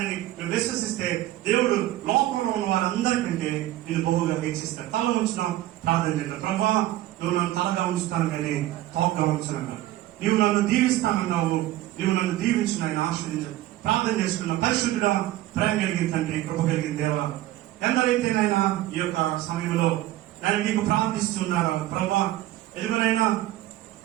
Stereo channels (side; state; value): left; quieter; 15.1 dB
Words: నువ్వు విశ్వసిస్తే దేవుడు లోకంలో ఉన్న వారందరికంటే నేను బహుగా హెచ్చిస్తాడు. తల ఉంచున్నాం, ప్రార్థన చేద్దాం. ప్రభా, నువ్వు నన్ను తలగా ఉంచుతాను కానీ తోకగా ఉంచున్నాను. నీవు నన్ను దీవిస్తానన్నావు, నీవు నన్ను దీవించిన ఆయన ఆస్వాదించాడు. ప్రార్థన చేసుకున్న పరిశుద్ధుడా, ప్రేమ కలిగిన తండ్రి, కృప కలిగిన దేవా, ఎందరైతే నాయన ఈ యొక్క సమయంలో నేను నీకు ప్రార్థిస్తున్నారా ప్రభా, ఎదుగునైనా